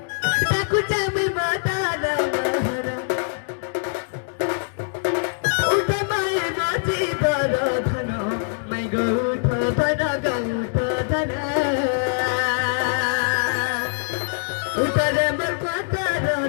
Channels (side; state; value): right; silent; digital silence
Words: ताकू चामी माता नहर उठा माई माची बरधन मै गौठ धन गौठ धन उठा रे मर माता